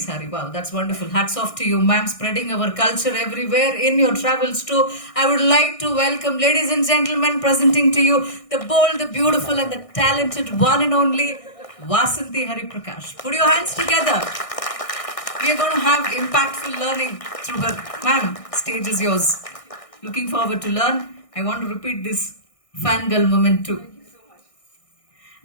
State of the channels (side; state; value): right; late; 1.6 ms